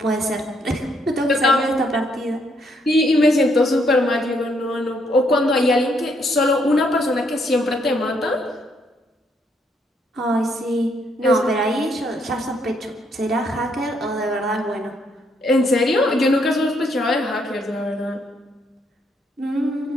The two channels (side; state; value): both; normal; correlation 0.72